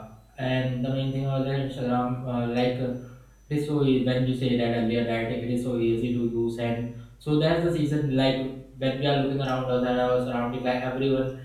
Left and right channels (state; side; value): identical; both; correlation 1.00